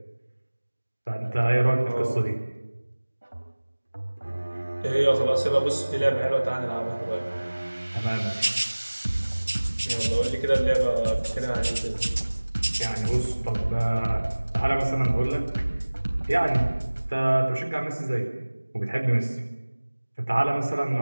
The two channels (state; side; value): inverted; both; correlation -1.00